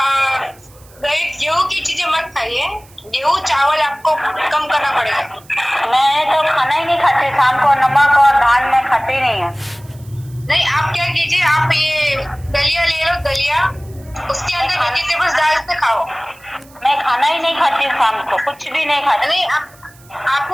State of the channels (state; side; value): noise; right; hiss, 26 dB below the sound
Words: गेहूं की चीजें मत खाइए, गेहूं चावल आपको कम करना पड़ेगा। मैं तो खाना ही नहीं खाती शाम को, नमक और धान में खाती नहीं है। नहीं, आप क्या कीजिए, आप ये दलिया ले लो, दलिया, उसके अंदर वेजिटेबल्स डाल के खाओ। मैं खाना ही नहीं खाती शाम को, कुछ भी नहीं खाती। नहीं,